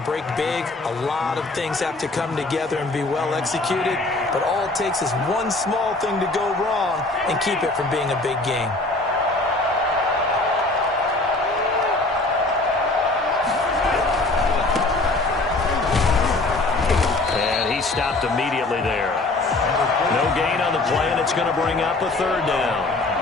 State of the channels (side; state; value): right; quieter; 3.0 dB